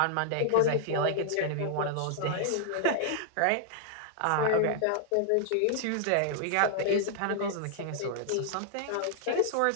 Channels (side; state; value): both; different; correlation -0.01